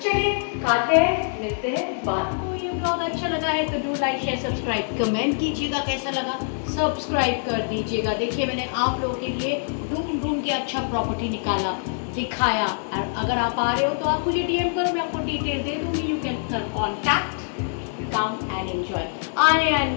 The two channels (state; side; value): silent; right; digital silence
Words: चलिए खाते हैं, मिलते हैं बाद. तो ये ब्लॉग अच्छा लगा है तो do like share subscribe, comment कीजिएगा कैसा लगा, सब्सक्राइब कर दीजिएगा. देखिए मैंने आप लोगों के लिए ढूंढ के अच्छा प्रॉपर्टी निकाला, दिखाया. और अगर आप आ रहे हो तो आप मुझे डीएम करो, मैं आपको डिटेल दे दूँगी. You can contact, come and enjoy.